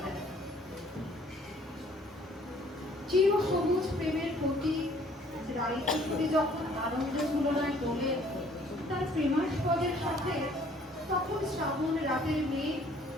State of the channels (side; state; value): both; normal; correlation 0.59